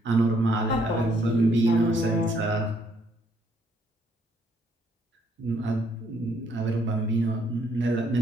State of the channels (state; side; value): normal; both; correlation 0.69